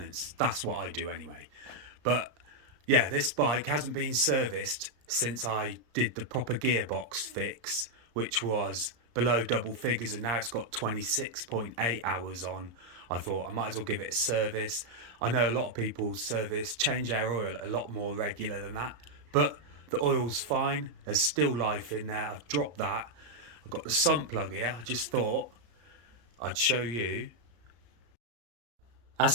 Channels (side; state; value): left; late; 34 ms